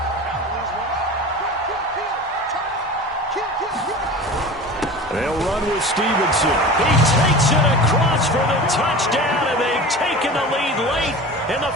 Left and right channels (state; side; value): normal; both; correlation 0.35